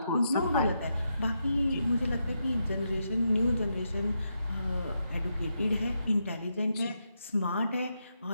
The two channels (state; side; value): inverted; both; correlation -0.83